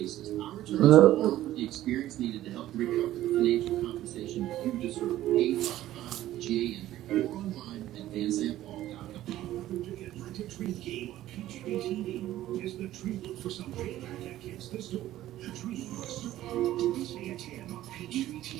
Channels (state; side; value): quieter; left; 14.1 dB